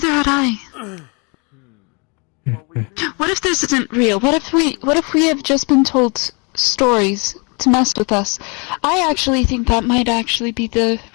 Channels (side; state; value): right; quieter; 32.5 dB